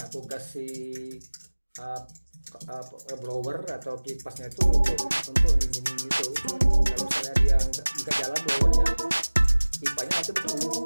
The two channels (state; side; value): inverted; both; correlation -1.00